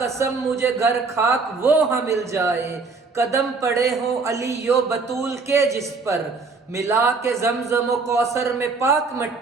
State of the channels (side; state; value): left; quieter; 4.3 dB